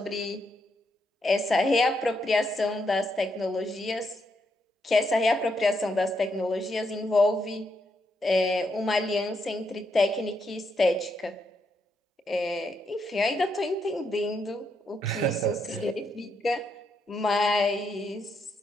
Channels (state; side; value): normal; both; correlation 0.79